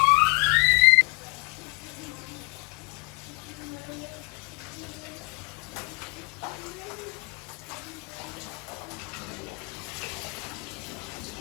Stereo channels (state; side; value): quieter; right; 30.0 dB